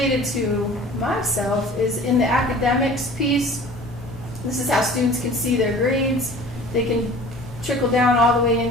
to myself is in the academics piece. This is how students can see their grades. They can trickle down all the way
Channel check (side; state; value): both; normal; correlation 0.44